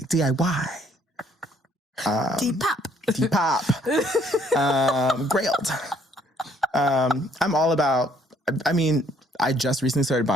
Depop. Depop. Grailed. I'm all about, I mean, I just recently started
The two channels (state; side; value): normal; both; correlation 0.64